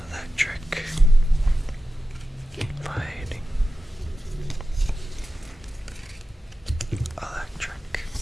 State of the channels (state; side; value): normal; both; correlation 0.92